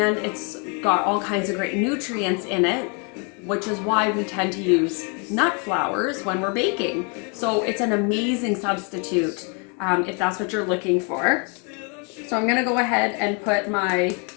got all kinds of great nutrients in it, which is why we tend to use nut flours when we're baking. So it's an amazing substitute if that's what you're looking for. So I'm gonna go ahead and put my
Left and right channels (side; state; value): right; quieter; 36.0 dB